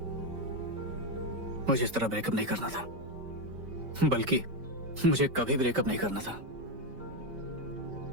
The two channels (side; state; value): left; late; 5.2 ms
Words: मुझे इस तरह ब्रेकअप नहीं करना था, बल्कि मुझे कभी ब्रेकअप नहीं करना था।